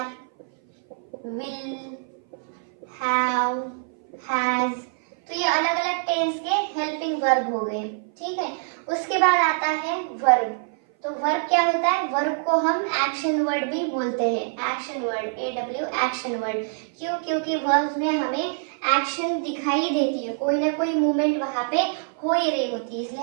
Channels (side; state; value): left; silent; 57 dB below the other